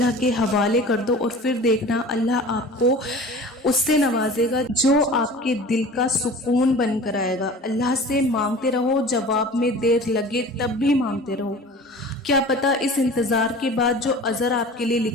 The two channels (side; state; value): both; normal; correlation 0.41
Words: کے حوالے کر دو، اور پھر دیکھنا اللہ آپ کو اس سے نوازے گا جو آپ کے دل کا سکون بن کر آئے گا۔ اللہ سے مانگتے رہو، جواب میں دیر لگے تب بھی مانگتے رہو، کیا پتہ اس انتظار کے بعد جو اجر آپ کے لیے